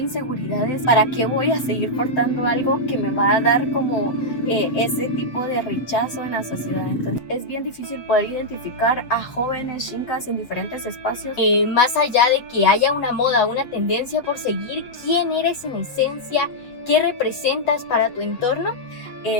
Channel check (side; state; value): right; late; 7.9 ms